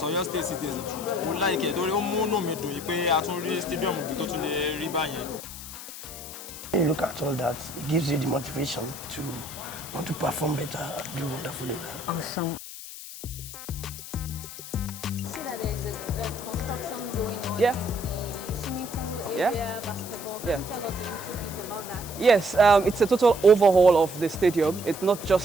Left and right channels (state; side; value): noise; left; hiss, 12 dB below the sound